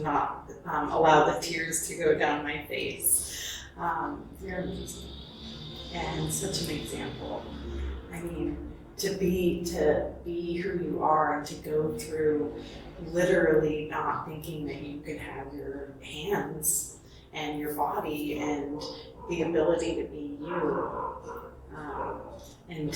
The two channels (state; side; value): identical; both; correlation 1.00